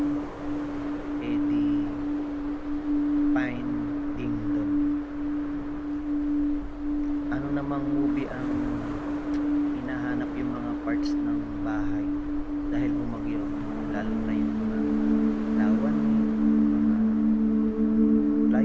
Eddie Finding Dory. Ano namang movie ang hinahanap yung mga parts ng bahay dahil bumagyo, lalo na yung mga lawan, mga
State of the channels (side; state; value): both; identical; correlation 1.00